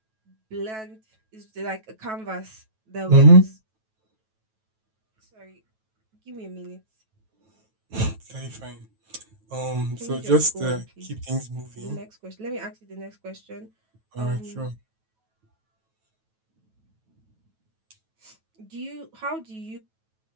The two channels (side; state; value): left; late; 9.2 ms